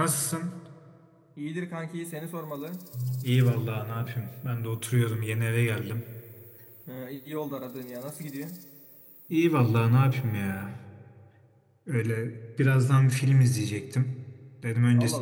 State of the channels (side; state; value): both; identical; correlation 1.00